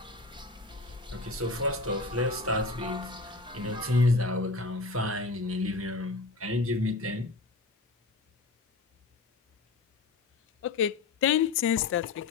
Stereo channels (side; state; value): right; quieter; 3.5 dB